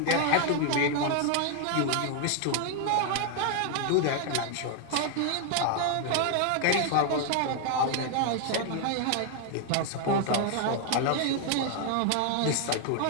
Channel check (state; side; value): different; both; correlation 0.00